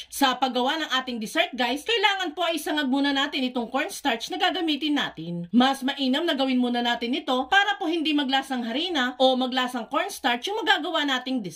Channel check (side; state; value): both; identical; correlation 1.00